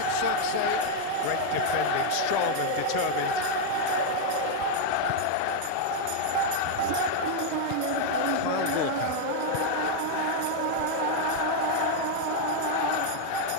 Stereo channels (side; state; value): both; different; correlation 0.00